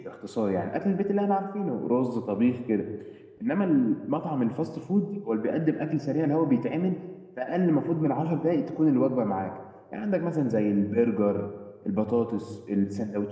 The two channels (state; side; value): identical; both; correlation 1.00